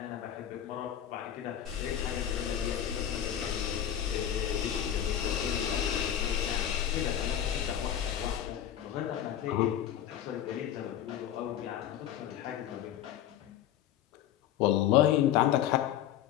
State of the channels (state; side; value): quieter; right; 10.7 dB